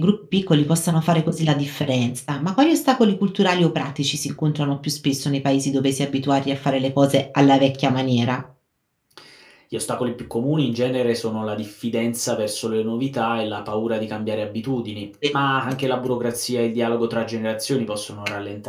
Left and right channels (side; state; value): both; identical; correlation 1.00